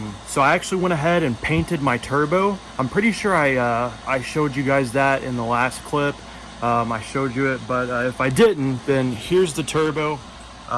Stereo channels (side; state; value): both; identical; correlation 1.00